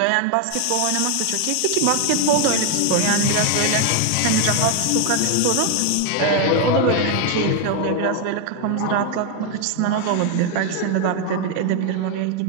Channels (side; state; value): both; different; correlation 0.01